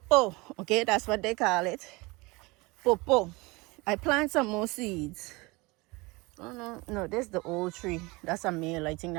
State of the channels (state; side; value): quieter; left; 24.5 dB